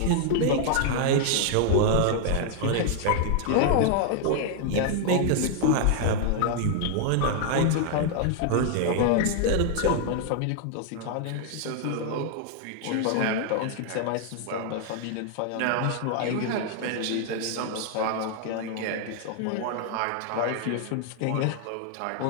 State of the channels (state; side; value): different; both; correlation 0.00